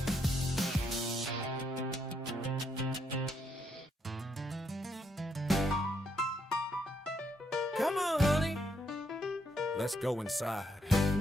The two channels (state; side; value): normal; both; correlation 0.76